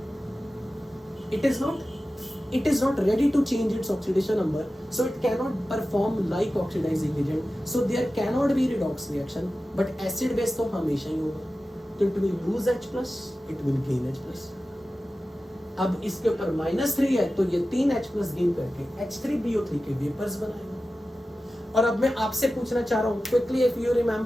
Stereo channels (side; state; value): both; normal; correlation 0.94